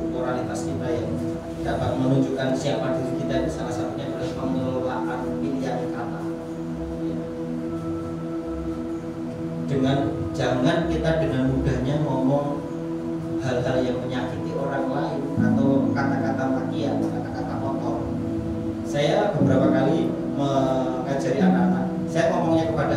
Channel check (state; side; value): identical; both; correlation 1.00